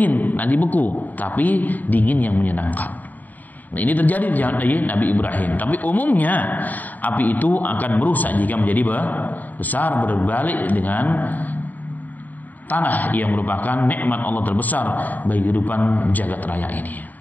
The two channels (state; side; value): late; right; 0.083 ms